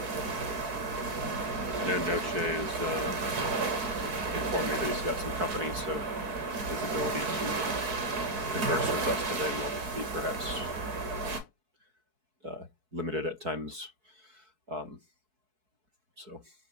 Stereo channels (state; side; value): late; left; 4.6 ms